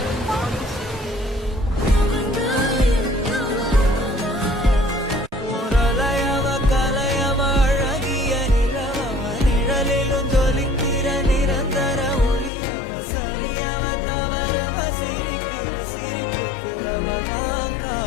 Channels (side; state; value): right; drops out; at 12.5 s